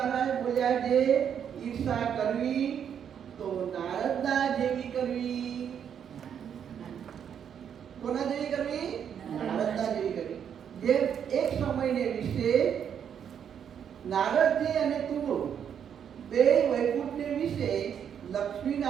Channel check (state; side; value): quieter; left; 8.3 dB